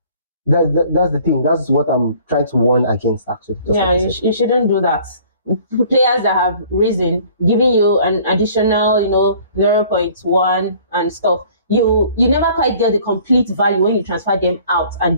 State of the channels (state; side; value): inverted; both; correlation -0.53